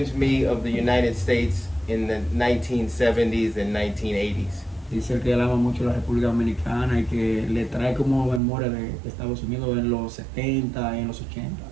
me of the United States in the 1970s and 1980s. Dice que él ama mucho la República Dominicana y que le trae como memoria de Estados Unidos en los 70 y en los 80.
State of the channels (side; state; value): left; drops out; at 8.4 s